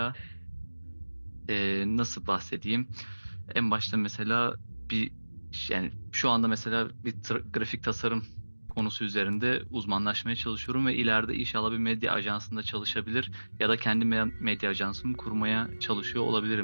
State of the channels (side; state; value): both; inverted; correlation -1.00